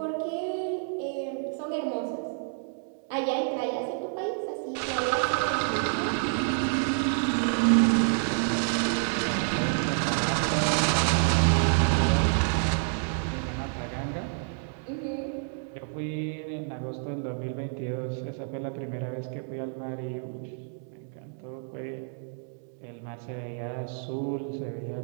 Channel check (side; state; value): left; silent; 59 dB below the other